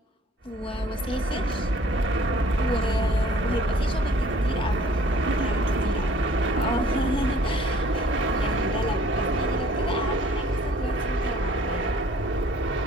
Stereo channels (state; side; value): normal; both; correlation 0.55